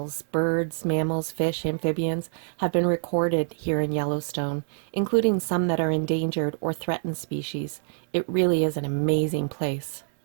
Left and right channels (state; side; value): silent; left; 61 dB below the other